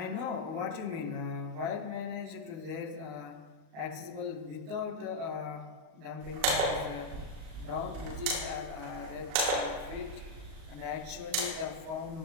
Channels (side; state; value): left; late; 38 ms